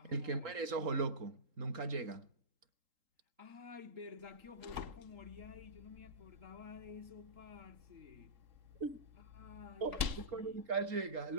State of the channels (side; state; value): left; late; 3.8 ms